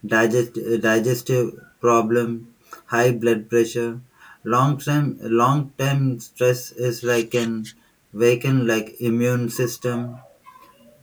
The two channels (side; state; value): both; identical; correlation 1.00